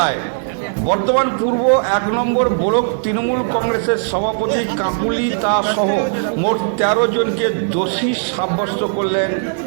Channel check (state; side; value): silent; left; digital silence